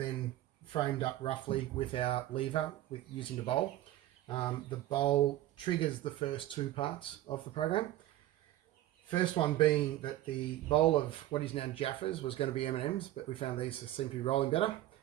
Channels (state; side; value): quieter; left; 14.6 dB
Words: framed up roughly with our lever using the bowl. The bowl triggers the first two parts of the program. First one being that the bowl of what is now Jaffas was going to be M&Ms, but we found these seem to be rolling better.